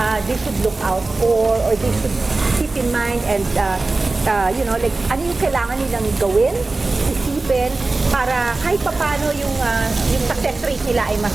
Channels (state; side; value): quieter; left; 3.4 dB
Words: they should look out for or they should keep in mind and like ano yung kailangan nilang gawin, isipin para kahit paano yung success rate nila ay mas